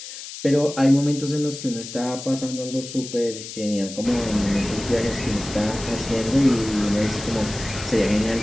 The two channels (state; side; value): noise; left; hiss, 11 dB below the sound